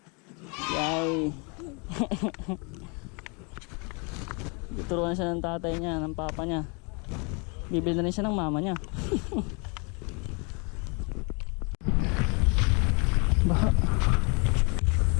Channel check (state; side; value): quieter; right; 32.8 dB